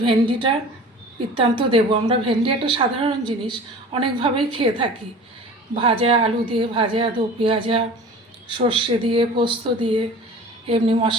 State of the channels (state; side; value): normal; both; correlation 0.41